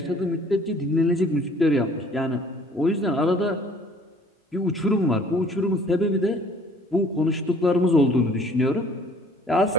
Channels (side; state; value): both; normal; correlation 0.55